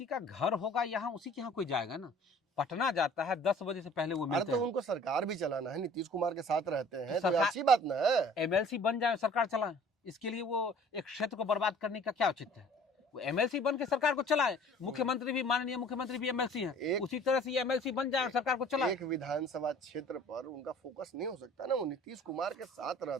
का घर होगा यहाँ, उसी के यहाँ कोई जाएगा ना। पटना जाता है 10 बजे से पहले वो मिलते तो हैं। उनको सरकार भी चलाना है, नीतीश कुमार के साथ रहते हैं तो सरकार- अच्छी बात ना है। एमएलसी बन जाए, सरकार चलाए, इसके लिए वो एक क्षेत्र को बर्बाद करने का क्या औचित्य है? वो एमएलसी बन के सरकार को चलाए। मुख्यमंत्री भी, माननीय मुख्यमंत्री भी एमएलसी हैं। उसी तरह से ये एमएलसी बन जाए और सरकार को चलाए। एक विधानसभा क्षेत्र पर उनका फोकस नहीं हो सकता ना। वो नीतीश कुमार के साथ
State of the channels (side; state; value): both; normal; correlation 0.50